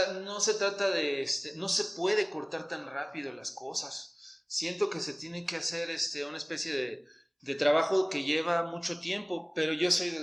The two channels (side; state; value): both; identical; correlation 1.00